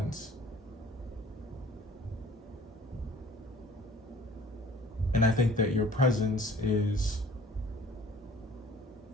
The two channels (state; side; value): normal; both; correlation 0.50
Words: And I think that your presence is,